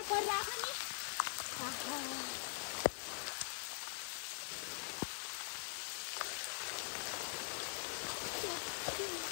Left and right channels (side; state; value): right; silent; digital silence